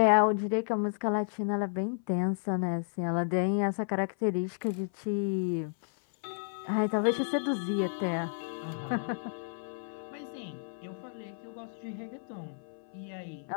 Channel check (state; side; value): silent; right; 56 dB below the other